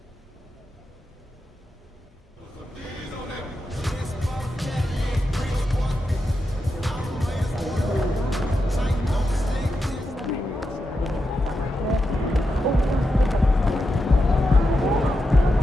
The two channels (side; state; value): both; normal; correlation 0.87